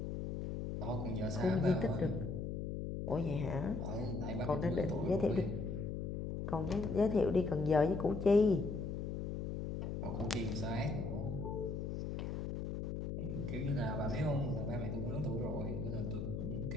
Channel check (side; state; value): left; noise; hum, 3 dB below the sound